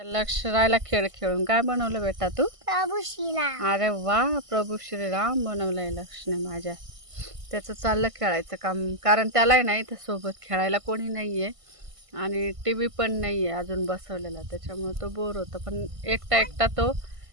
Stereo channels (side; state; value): left; late; 1.5 ms